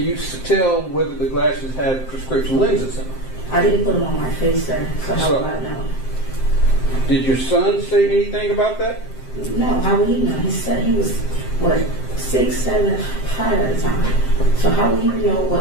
tell whether the glasses had prescription lenses in them? I didn't put them on my face, sir, so how So- would I know? Did your son say anything about that? No, how would he know? He said he was, what, 6, 7, 5 at the time. So how would he know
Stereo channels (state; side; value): late; right; 7.6 ms